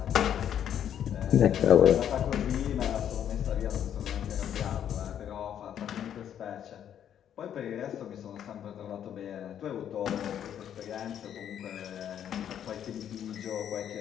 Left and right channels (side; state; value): right; quieter; 9.7 dB